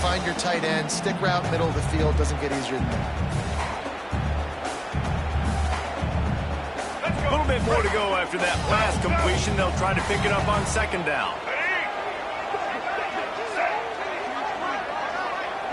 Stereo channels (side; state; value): both; identical; correlation 1.00